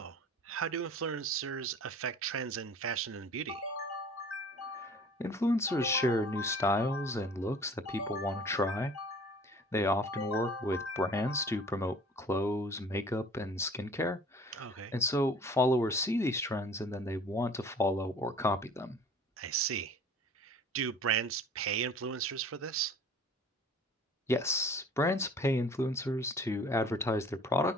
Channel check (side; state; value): both; normal; correlation 0.48